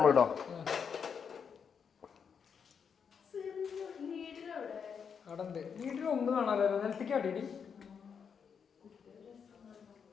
കേട്ടോ. അവിടെ ഉണ്ട്. വീട്ടിൽ ഒന്നും കാണാമല്ലോ. നിലത്തേക്ക് അടിയടി.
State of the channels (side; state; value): right; quieter; 6.7 dB